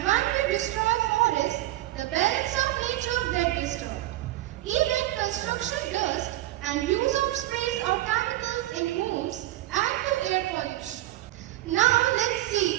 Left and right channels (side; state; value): left; quieter; 16.2 dB